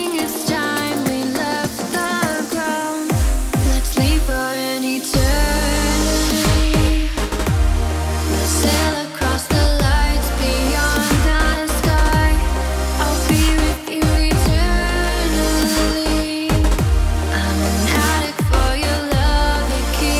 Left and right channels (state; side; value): identical; both; correlation 1.00